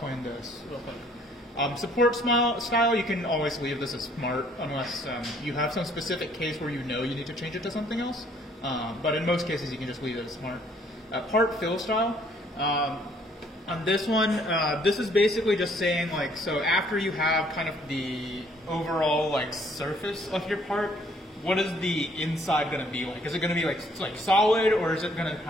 this real quick. Support style, you can always leave this as smart unless you have some specific case where you know you need to change it to something else. But in most cases, you can just leave it as smart. Part fill style. On this one, this is basically just saying, like, so after you have kind of the overall like surface of your part, what is the inside going to be like? Is it going to be like solid, or is it going to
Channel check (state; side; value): normal; both; correlation 0.62